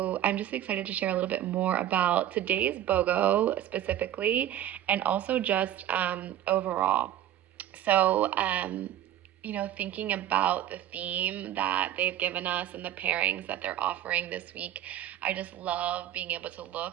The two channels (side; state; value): left; quieter; 11.9 dB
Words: I'm just excited to share a little bit more about today's BOGO specifically and also just overall. So, thinking about the theme that they've given us and the pairings that they're offering this week, I just love being able to